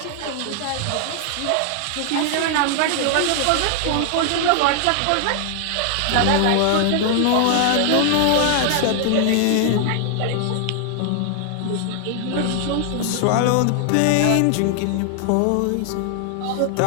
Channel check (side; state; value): both; different; correlation 0.00